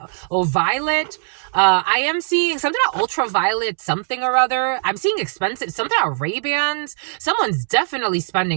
Or Violet. I am seeing something about ultraviolet something or other. I'm seeing expensive, something about Ray-Bans. Someone's definitely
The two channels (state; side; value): silent; left; 66 dB below the other